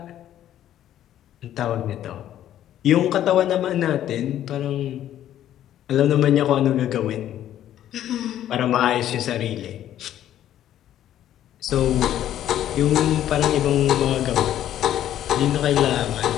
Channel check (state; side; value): quieter; right; 11.7 dB